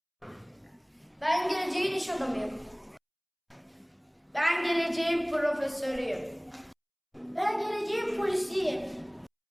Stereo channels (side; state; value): both; identical; correlation 1.00